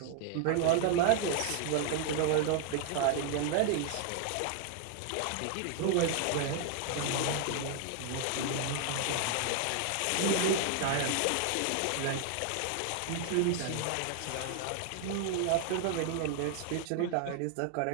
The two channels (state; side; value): different; both; correlation 0.00